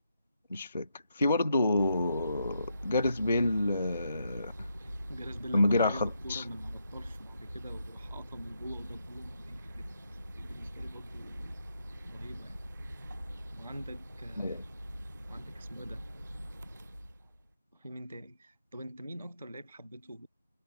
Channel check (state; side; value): inverted; both; correlation -0.80